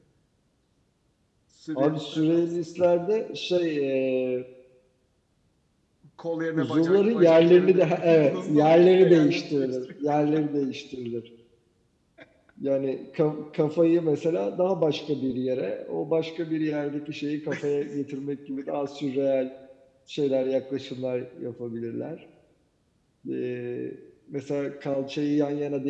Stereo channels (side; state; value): both; identical; correlation 1.00